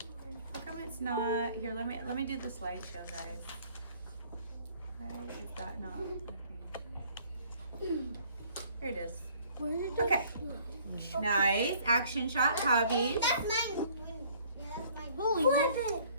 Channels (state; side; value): inverted; both; correlation -0.57